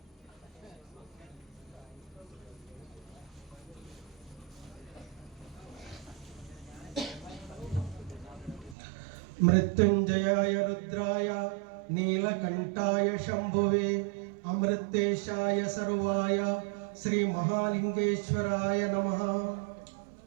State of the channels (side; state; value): left; drops out; at 8.8 s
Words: ಮೃತ್ಯುಂಜಯಾಯ ರುದ್ರಾಯ ನೀಲಕಂಠಾಯ ಶಂಭುವೆ ಅಮೃತೇಶಾಯ ಸರ್ವಾಯ ಶ್ರೀ ಮಹಾಲಿಂಗೇಶ್ವರಾಯ ನಮಃ.